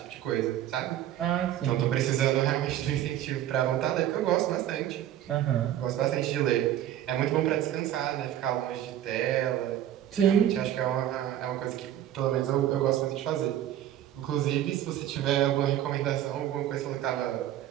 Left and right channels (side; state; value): left; quieter; 11.9 dB